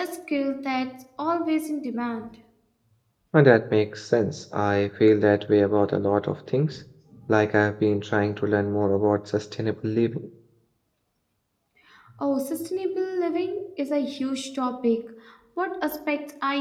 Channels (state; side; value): identical; both; correlation 1.00